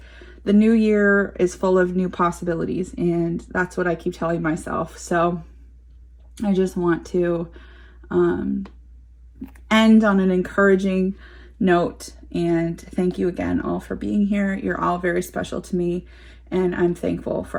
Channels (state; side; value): identical; both; correlation 1.00